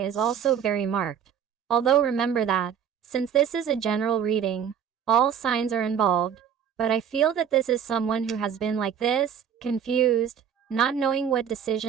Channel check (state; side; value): quieter; left; 8.1 dB